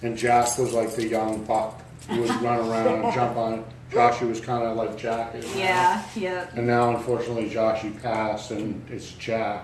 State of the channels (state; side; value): identical; both; correlation 1.00